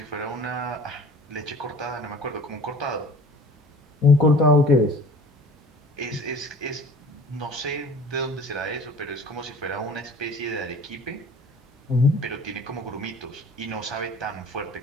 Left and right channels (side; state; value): both; normal; correlation 0.44